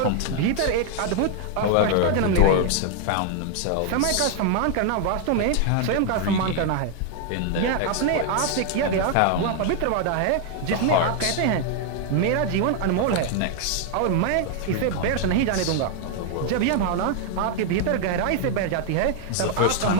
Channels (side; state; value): both; different; correlation 0.00